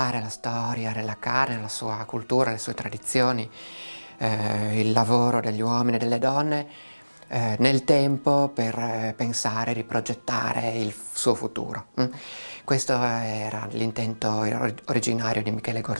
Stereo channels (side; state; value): both; inverted; correlation -1.00